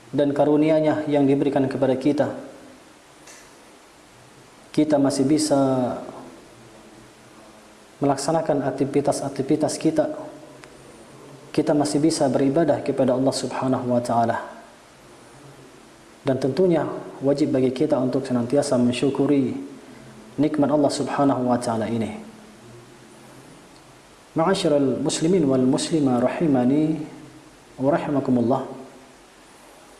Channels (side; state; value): both; identical; correlation 1.00